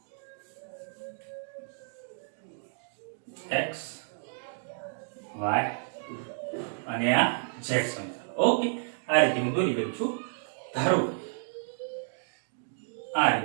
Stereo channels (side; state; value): left; silent; digital silence